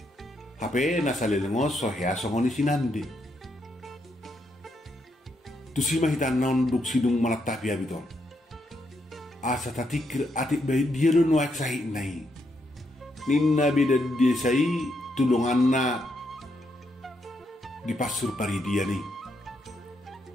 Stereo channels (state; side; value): normal; both; correlation 0.78